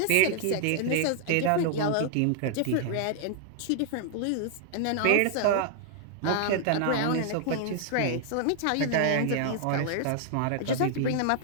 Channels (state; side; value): different; both; correlation 0.00